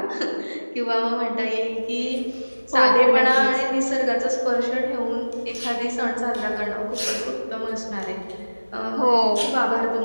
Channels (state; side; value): inverted; both; correlation -1.00